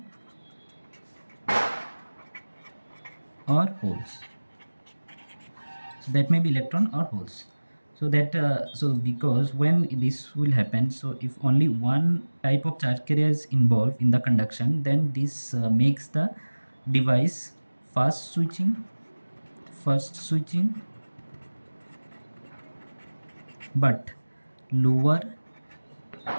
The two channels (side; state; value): both; inverted; correlation -1.00